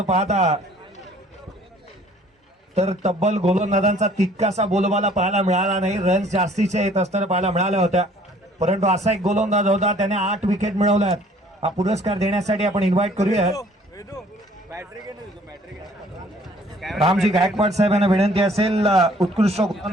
पाहता तर तब्बल गोलंदाजांचा तितकासा बोलबाला पाहायला मिळाला नाही. रन्स जास्तीचे येत असताना पाहायला मिळाल्या होत्या, परंतु असा एक गोलंदाज होता त्याने 8 विकेट मिळवल्यात. हा पुरस्कार देण्यासाठी आपण इन्व्हाइट करूया रामजी गायकवाड साहेब यांना विनंती असेल. उत्कृष्ट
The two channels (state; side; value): normal; both; correlation 0.56